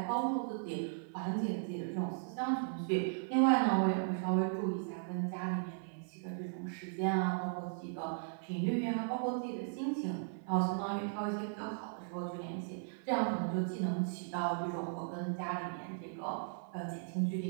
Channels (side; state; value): left; silent; 53 dB below the other